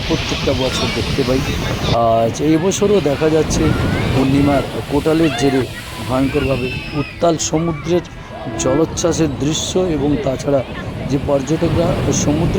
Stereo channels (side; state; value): both; identical; correlation 1.00